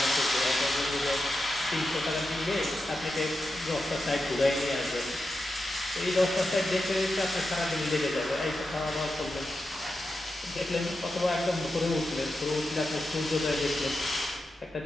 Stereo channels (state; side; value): normal; both; correlation 0.89